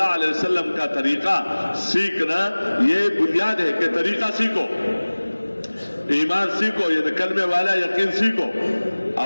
علیہ وسلم کا طریقہ سیکھنا یہ بنیاد ہے کہ طریقہ سیکھو, ایمان سیکھو, یہ کلمے والا یقین سیکھو,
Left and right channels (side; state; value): both; inverted; correlation -1.00